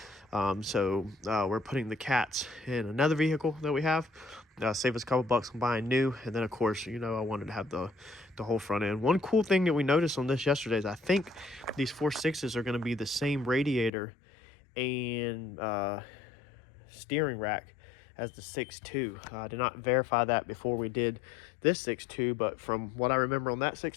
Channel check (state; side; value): drops out; right; at 13.9 s